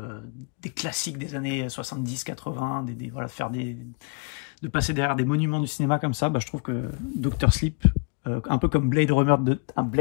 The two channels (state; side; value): quieter; right; 36.0 dB